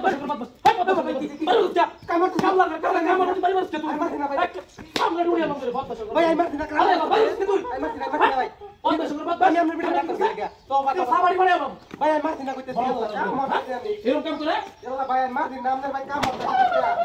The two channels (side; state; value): both; identical; correlation 1.00